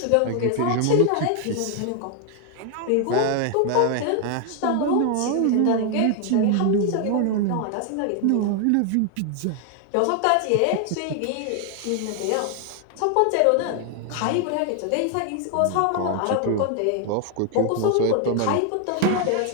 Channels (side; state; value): both; different; correlation 0.00